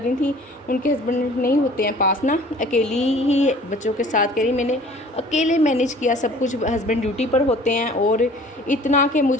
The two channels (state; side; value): normal; both; correlation 0.49